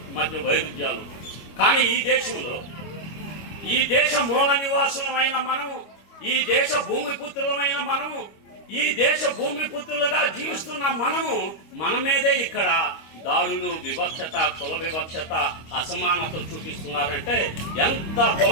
మధ్య వైరుధ్యాలు. కానీ ఈ దేశంలో, ఈ దేశ మూల నివాసులమైన మనము, ఈ దేశ భూమిపుత్రులమైన మనము, ఈ దేశ భూమిపుత్రులుగా జీవిస్తున్న మనము మన మీదే ఇక్కడ దాడులు, వివక్షత, కుల వివక్షత, అసమానత చూపిస్తున్నారంటే ఎంత కుల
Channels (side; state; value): right; late; 25 ms